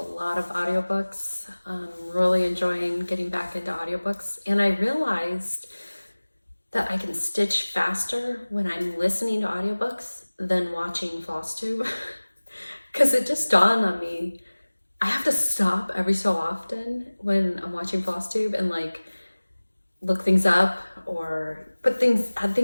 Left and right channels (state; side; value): inverted; both; correlation -1.00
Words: of audiobooks. Really enjoying getting back into audiobooks. And I realized that I can stitch faster when I'm listening to audiobooks than watching FlossTube. Because it just dawned on me, I have to stop every so often when I'm watching FlossTube and like look things up or add